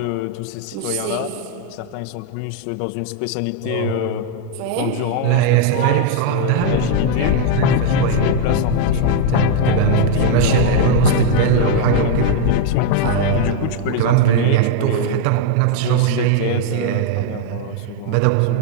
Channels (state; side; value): different; both; correlation 0.00